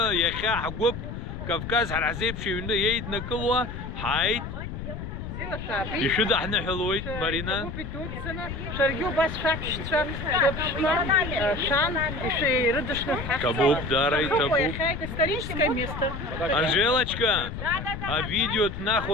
يخا حقوب كفكاز حرعزيب شيونا ييد نقلوا حايد يشد احنا حلوي مارينا شرقيو بس شاكشتشا شان еще рыдышных Табук, дарай, табук. Это историческое место. Анжелочка, а видео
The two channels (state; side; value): noise; left; rumble, 7 dB below the sound